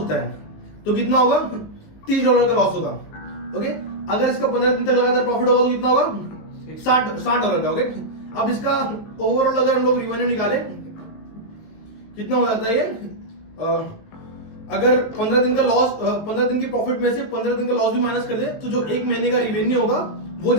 है, तो कितना होगा, $30 का लॉस होगा। ओके, अगर इसका 15 दिन तक लगातार प्रॉफिट होगा तो कितना होगा, $60 का। ओके, अब इसका ओवरऑल अगर हम लोग रिवेन्यू निकाले कितना हो जाता है ये, अगर 15 दिन का लॉस, 15 दिन की प्रॉफिट में से 15 दिन का लॉस भी माइनस कर दे तो जो एक महीने का रिवेन्यू होगा वो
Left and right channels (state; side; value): late; right; 19 ms